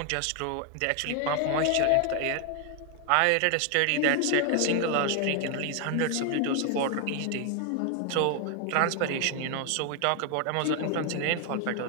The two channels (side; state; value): both; different; correlation 0.00